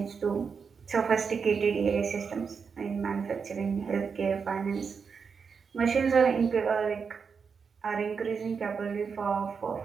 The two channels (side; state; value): left; quieter; 5.8 dB